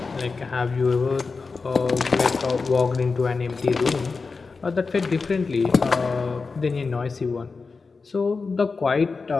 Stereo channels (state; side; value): quieter; right; 4.4 dB